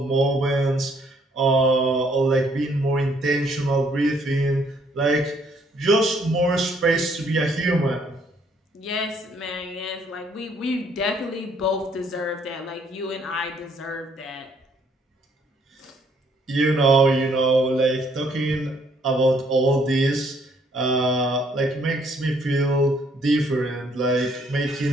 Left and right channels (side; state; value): both; normal; correlation 0.66